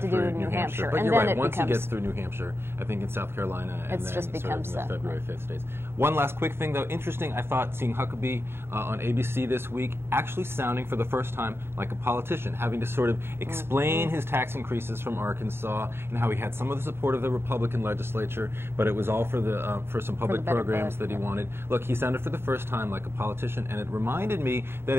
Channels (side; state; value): left; late; 0.11 ms